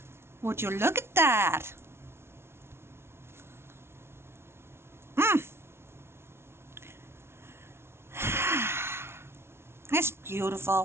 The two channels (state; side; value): late; left; 0.12 ms